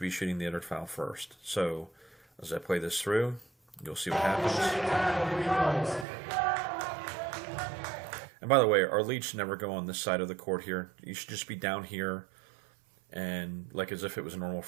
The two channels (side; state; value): left; drops out; at 6.1 s